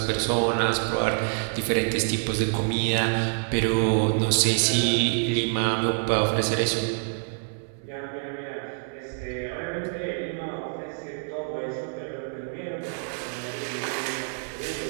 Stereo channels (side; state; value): left; silent; 60 dB below the other